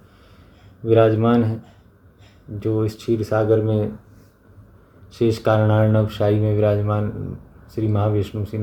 विराजमान हैं, जो इस क्षीर सागर में शेष कारणार्णव शाही में विराजमान श्री महाविष्णु श्री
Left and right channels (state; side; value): identical; both; correlation 1.00